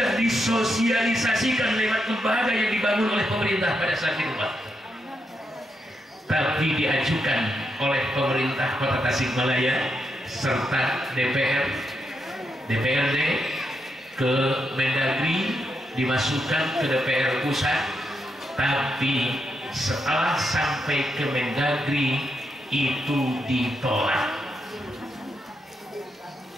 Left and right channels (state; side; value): normal; both; correlation 0.83